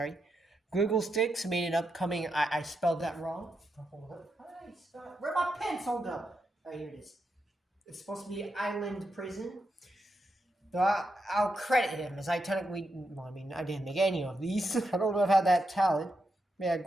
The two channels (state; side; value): normal; both; correlation 0.84